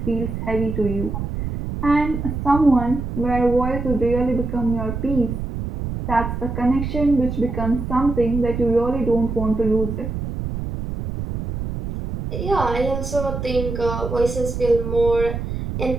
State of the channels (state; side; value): noise; right; rumble, 5 dB below the sound